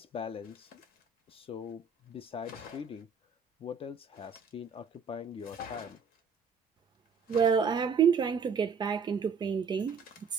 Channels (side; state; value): left; quieter; 5.4 dB